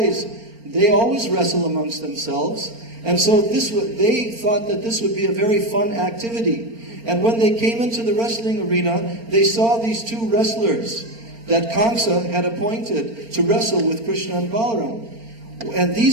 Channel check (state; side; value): late; left; 4.4 ms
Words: they always wrestle amongst themselves. And so they thought that this would be a very fun activity. And when they came into the wrestling arena, they saw these two wrestlers that Kansa had appointed to wrestle with Krishna and Balaram. And